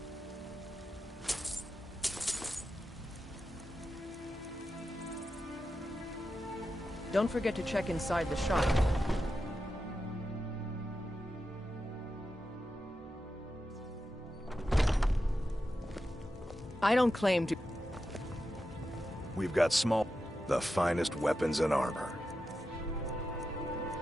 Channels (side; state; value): both; normal; correlation 0.90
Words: Don't forget to check inside the shop. I don't claim to... We've got the finest weapons and armor.